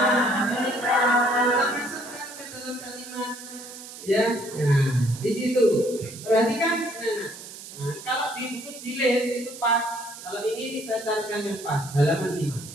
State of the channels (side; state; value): right; noise; hiss, 14 dB below the sound